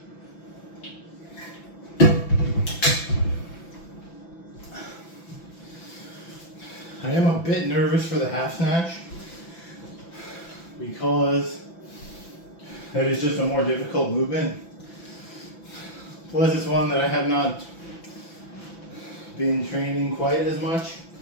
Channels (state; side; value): late; right; 5.9 ms